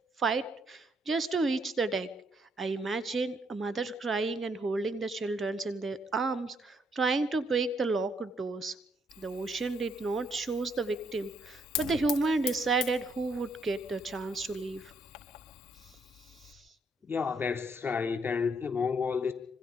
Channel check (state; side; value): normal; both; correlation 0.72